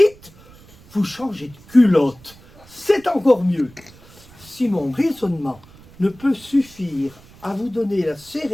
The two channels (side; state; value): right; noise; rumble, 24 dB below the sound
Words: vous changez de culotte. C'est encore mieux. Si mon raisonnement ne peut suffire à vous donner la